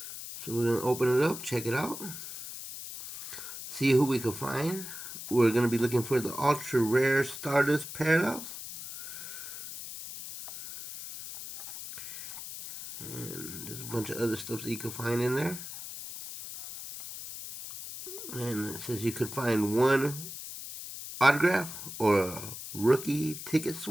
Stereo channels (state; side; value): noise; left; hiss, 10 dB below the sound